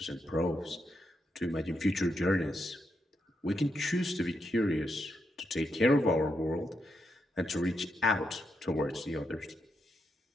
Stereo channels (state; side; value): normal; both; correlation 0.82